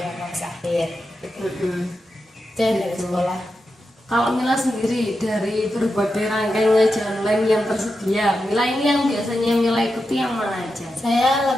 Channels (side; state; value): both; normal; correlation 0.89